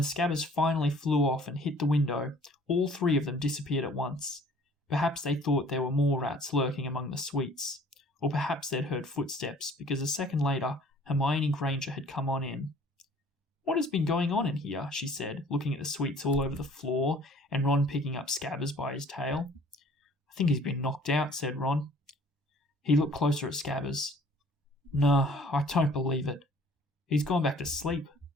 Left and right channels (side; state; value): both; normal; correlation 0.53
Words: Scabbers finally flew off and hit the window, all 3 of them disappeared at once. Perhaps they thought there were more rats lurking among the sweets, or perhaps they'd heard footsteps, because a second later Hermione Granger had come on in. What has been going on in here? She said, looking at the sweets all over the floor, and Ron picking up Scabbers by his tail. I think he's been knocked out, said Ron. He looked closer at Scabbers. No, I don't believe it. He's gone back to sleep.